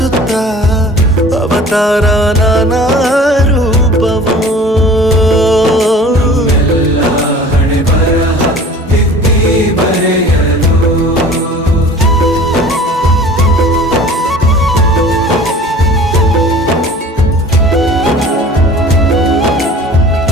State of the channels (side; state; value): both; normal; correlation 0.44